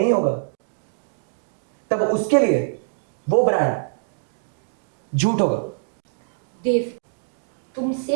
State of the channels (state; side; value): silent; left; digital silence